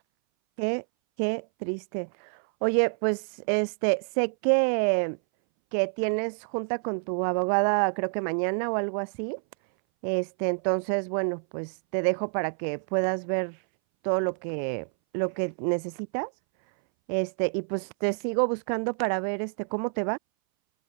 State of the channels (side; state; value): left; silent; 59 dB below the other